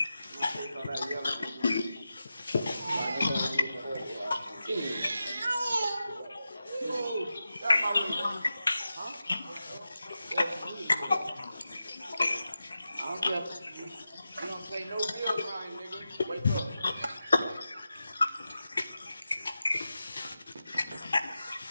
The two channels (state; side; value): inverted; both; correlation -0.91